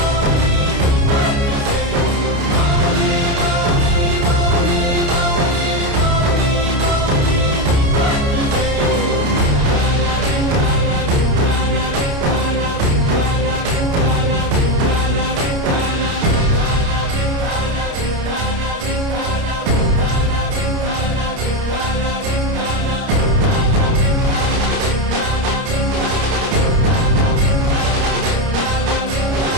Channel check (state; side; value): late; left; 29 ms